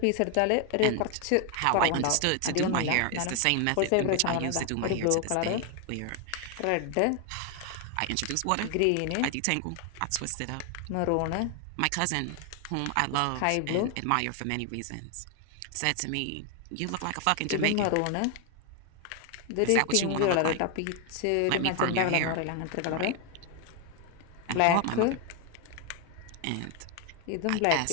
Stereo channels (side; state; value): both; different; correlation 0.01